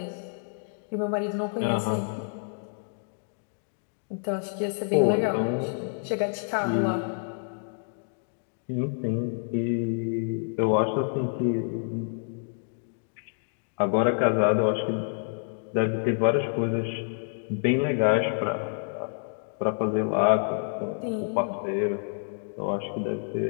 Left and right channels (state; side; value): silent; right; digital silence